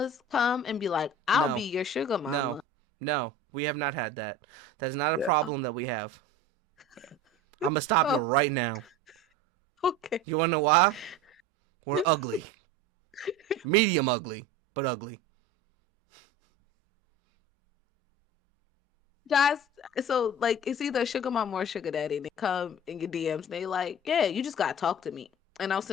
come and be like, I'll be No, your sugar no, mama. no. We have not had that. That's not a Yeah. problem that we have. I'm gonna stop you Oh, right now. okay. You wanna know why? We're ugly. Medium ugly, but ugly. Guys, so like it's either sugar mama or sugar daddy. They come in your DMs and they like, yeah, you just gotta talk to me and I'll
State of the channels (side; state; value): both; normal; correlation 0.36